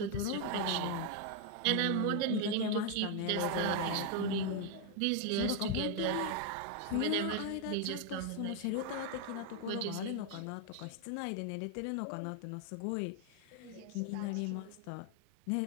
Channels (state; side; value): different; both; correlation 0.01